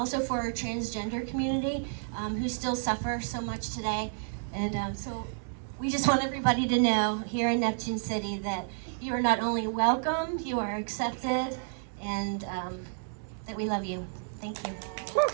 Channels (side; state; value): left; silent; digital silence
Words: for our transgender community, who still suffer so much today. And so we just want everybody to know here in Neptune City that you are not only welcome, you are accepted, and that we love you. Thank you.